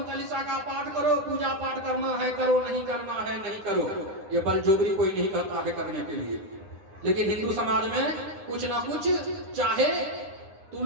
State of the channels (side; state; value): left; late; 9.7 ms